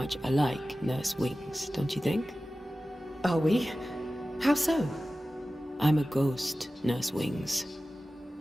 alike, Nurse Wings, don't you think? Are we? How so? I'm a ghost, Nurse Wings.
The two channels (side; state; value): both; normal; correlation 0.96